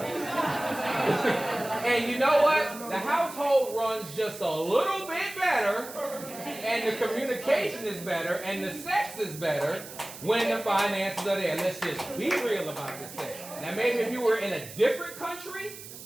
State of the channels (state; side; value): noise; right; hiss, 14 dB below the sound